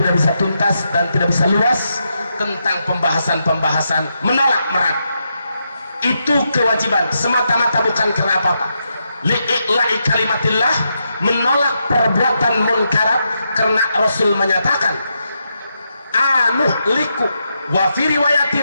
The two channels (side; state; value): both; inverted; correlation -0.83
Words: bisa tuntas dan tidak bisa luas tentang pembahasan menolak merat. Itu kewajiban semata-mata, bukan karena apa-apa. Li'i'la'i kalimatillah, menolak perbuatan munkarat, karena Rasul menyatakan anuhliku wa fi